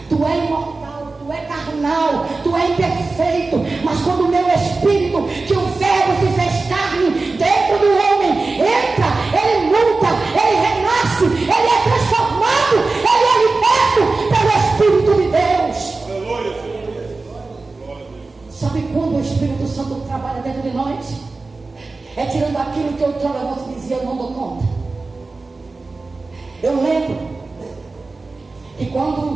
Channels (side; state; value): left; quieter; 3.7 dB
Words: tu é imortal, tu é carnal, tu é imperfeito, mas quando o meu Espírito, que o Verbo se fez carne dentro do homem, entra, ele muda, ele renasce, ele é transformado, ele é liberto pelo Espírito de Deus. Sabe quando o Espírito Santo trabalha dentro de nós? É tirando aquilo que outrora você dizia: eu não dou conta. Eu lembro que